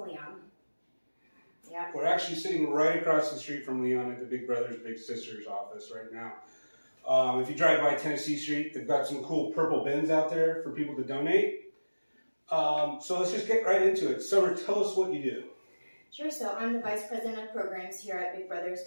Leon. Yeah. We're actually sitting right across the street from Leon at the Big Brothers Big Sisters office right now. If you drive by Tennessee Street, they've got some cool purple bins out there for people to donate. So let's just get right into it. Summer, tell us what you do. Sure. So I'm the Vice President of Programs here at Big Brothers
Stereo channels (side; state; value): both; inverted; correlation -1.00